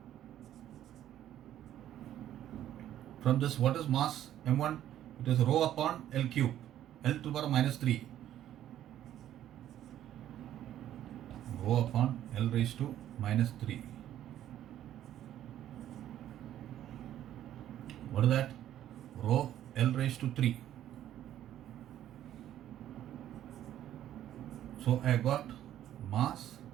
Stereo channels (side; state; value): left; quieter; 11.8 dB